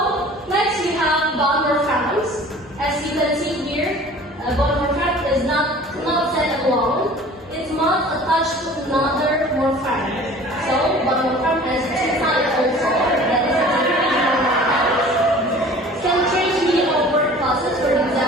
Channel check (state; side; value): normal; both; correlation 0.46